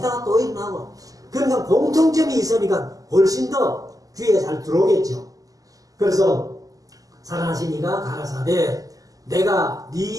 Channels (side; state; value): left; late; 0.17 ms